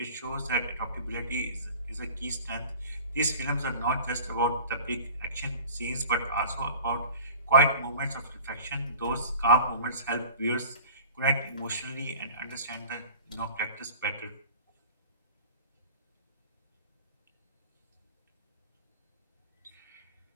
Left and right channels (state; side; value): inverted; both; correlation -0.42